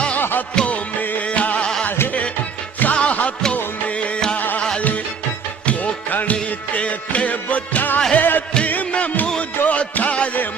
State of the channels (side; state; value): left; quieter; 5.9 dB